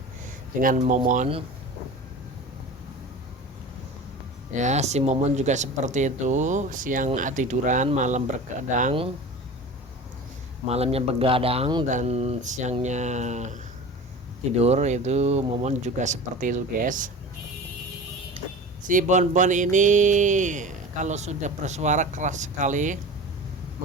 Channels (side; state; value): both; normal; correlation 0.35